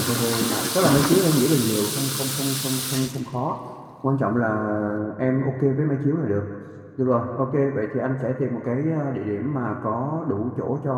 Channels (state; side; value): identical; both; correlation 1.00